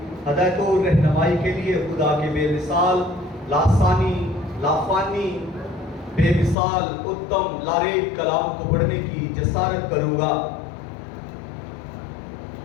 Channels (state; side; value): drops out; right; at 6.6 s